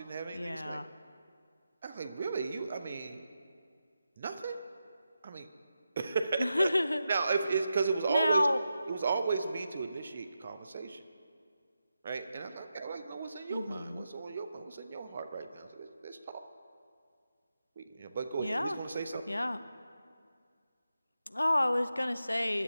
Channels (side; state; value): both; inverted; correlation -0.88